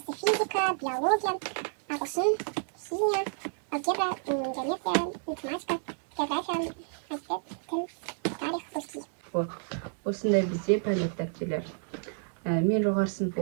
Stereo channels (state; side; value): silent; left; digital silence